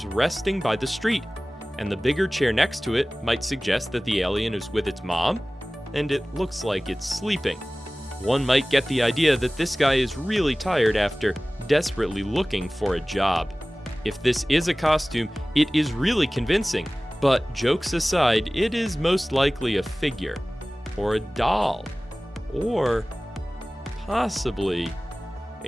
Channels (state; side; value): normal; both; correlation 0.98